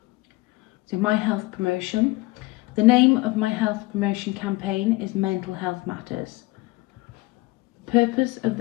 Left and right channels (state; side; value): quieter; right; 21.4 dB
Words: So My Health Promotion. The name of My Health Promotion campaign is Mental Health Matters. The purpose of